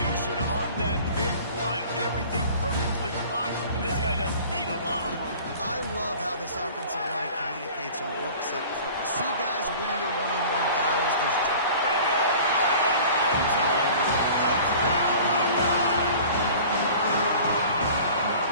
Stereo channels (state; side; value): inverted; both; correlation -0.44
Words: on that big run. Everything perfectly blocked, and this guy doesn't need a lot of room. I love how this offensive line communicates and works up front. You see guys winning their one-on-one battles. There's And they'll run into the end zone. Touchdown, Hawkeye!